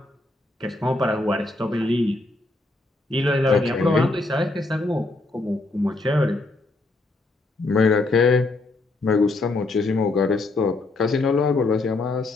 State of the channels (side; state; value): right; quieter; 3.1 dB